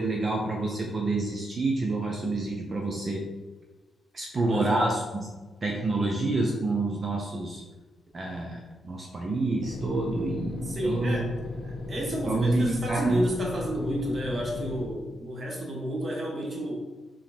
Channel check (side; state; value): both; normal; correlation 0.83